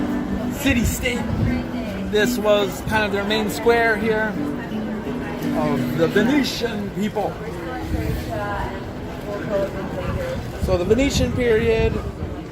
city-state. This was kind of their main square here of the Venetian people. So the Venetian period,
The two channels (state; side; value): identical; both; correlation 1.00